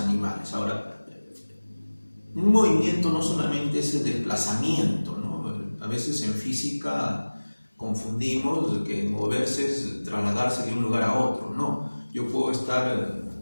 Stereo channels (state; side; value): inverted; both; correlation -1.00